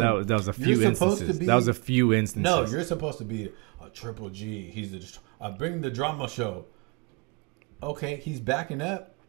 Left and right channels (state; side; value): quieter; left; 29.8 dB